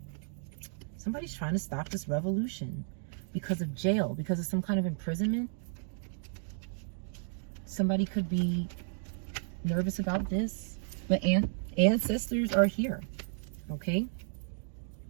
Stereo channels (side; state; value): left; silent; digital silence